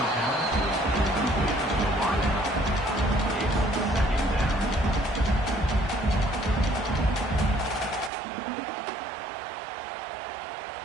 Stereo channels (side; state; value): left; drops out; at 8.1 s